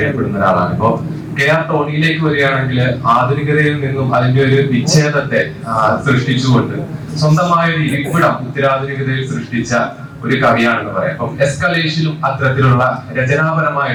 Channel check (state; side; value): identical; both; correlation 1.00